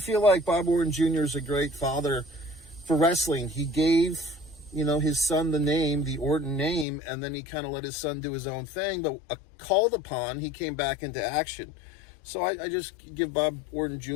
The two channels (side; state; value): right; drops out; at 6.9 s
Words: like Bob Orton Jr. is a great father for wrestling. He gave, his son the name, the Orton name, and then he kind of let his son do his own thing, but called upon, he came back into action. So I just give Bob Orton